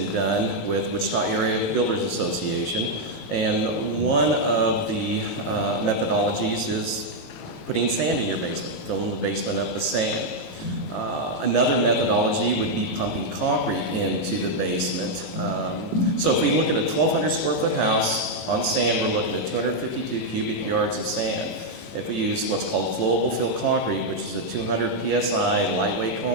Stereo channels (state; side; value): late; right; 18 ms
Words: done with Wichita Area Builders Association, and one of the methodologies is putting sand in your basement, filling the basement up with sand. Another methodology would be pumping concrete into the basement. So if we look at a 1,200 square foot house on sand, we're looking at 252 cubic yards of sand. If we use what's called flowable fill concrete, which is a 200 psi lightweight